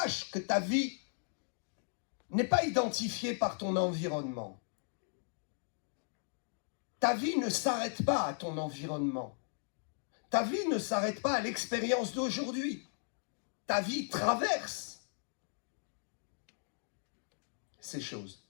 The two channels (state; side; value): silent; right; digital silence